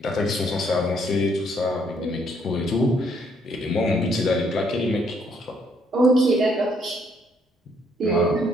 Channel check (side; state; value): both; normal; correlation 0.69